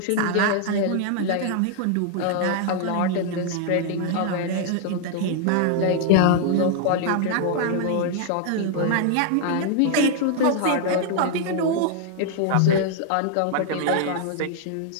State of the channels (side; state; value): both; different; correlation 0.00